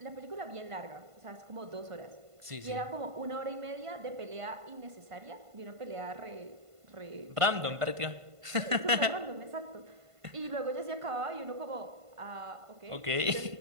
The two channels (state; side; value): late; left; 1.5 ms